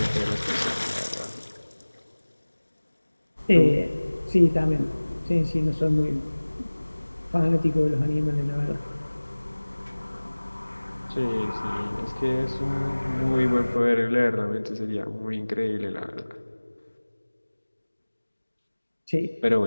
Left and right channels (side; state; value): both; inverted; correlation -1.00